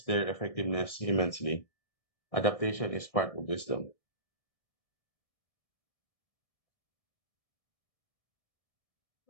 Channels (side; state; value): right; late; 1.6 ms